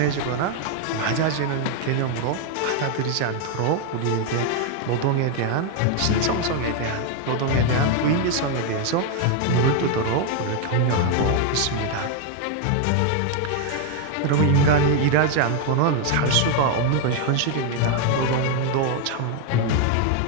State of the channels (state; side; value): different; both; correlation 0.00